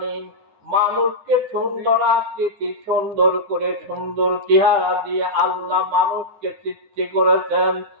মানুষকে সুন্দর আকৃতি, সুন্দর করে সুন্দর চেহারা দিয়ে আল্লাহ মানুষকে সৃষ্টি করেছেন,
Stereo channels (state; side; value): late; left; 9.8 ms